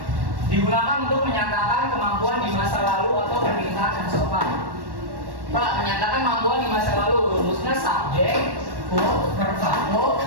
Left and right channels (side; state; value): left; late; 1.1 ms